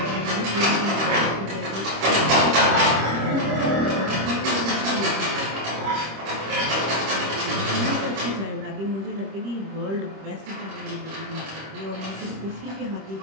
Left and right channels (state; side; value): late; left; 26 ms